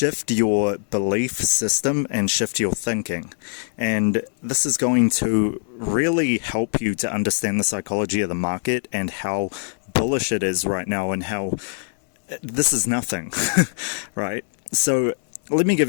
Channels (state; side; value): silent; right; 64 dB below the other